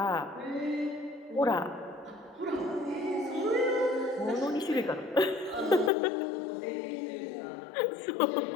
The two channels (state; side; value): drops out; right; at 5.9 s